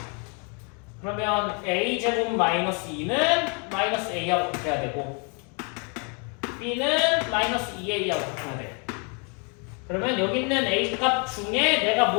그러면 a제곱 마이너스 2는 마이너스 a하고 같아야 되고 b는 마이너스 2a하고 바꿔야 돼. 그러면 여기 있는 a 값 중에 내가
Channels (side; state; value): right; quieter; 35.6 dB